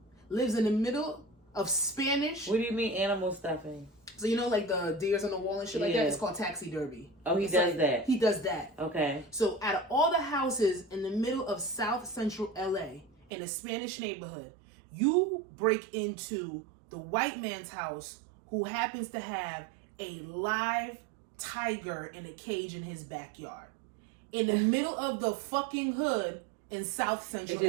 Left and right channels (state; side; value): drops out; left; at 13.3 s